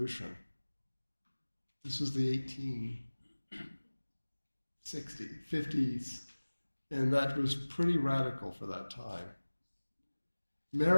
This was the 50s, and that was pretty radical for that time.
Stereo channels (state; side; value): inverted; both; correlation -1.00